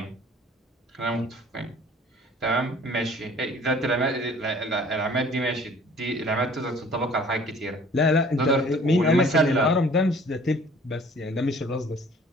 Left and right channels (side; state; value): both; normal; correlation 0.52